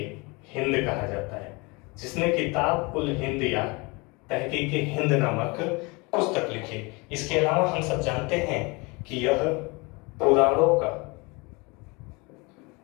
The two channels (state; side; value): quieter; right; 27.3 dB